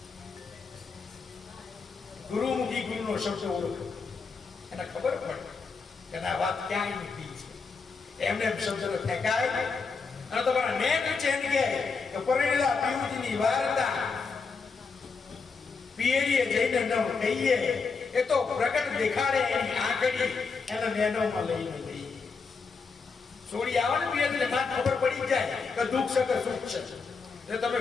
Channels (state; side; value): quieter; right; 4.9 dB